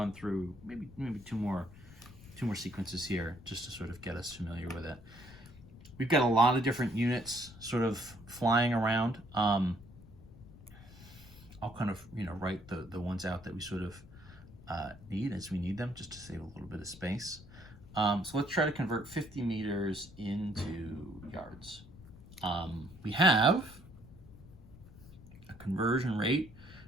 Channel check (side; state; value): left; noise; rumble, 19 dB below the sound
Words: through maybe two more sequences here just to sort of get us familiar with it. We've got a lot of different units sort of flying around. I'll kind of write the ones out that we sort of need as we need them, just to save a little bit of space. So let's try to convert 50 meters into yards. We have a conversion rate,